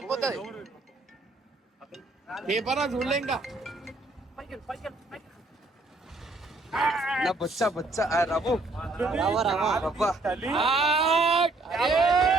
పేపర్ చూడలే ఇంకా. నా బొచ్చ రవ్వు రవ్వ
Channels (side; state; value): left; quieter; 3.1 dB